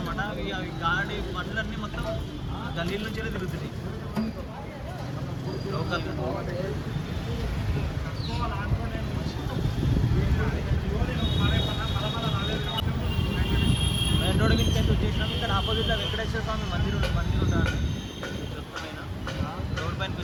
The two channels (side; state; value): both; identical; correlation 1.00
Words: అవి గాడి బండ్లన్నీ మొత్తం గల్లీల నుంచే తిరుగుతున్నాయి లోకల్గా. మెయిన్ రోడ్ మీద వచ్చేసినాం. ఇక్కడ ఆపోజిట్లో వెంకటేశ్వర స్వామి మందిరం ఉంటారు. రోడ్ పైనకి